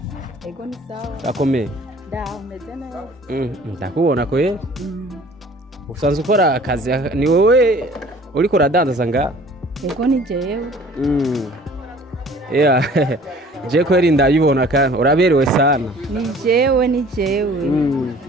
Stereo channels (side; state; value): both; normal; correlation 0.50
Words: Ego ni sawa. Akomeye. Umeze neza. Ndakubona ko ye. Usanzwe ukora akazi, ni wowe uriko uradandaza nga? Ego ni jewe. Je kweri ndayibona kandi uraberewe sana. Ni jewe.